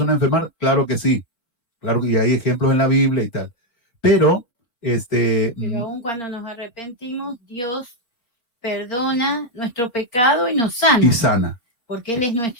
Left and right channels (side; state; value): right; late; 4.2 ms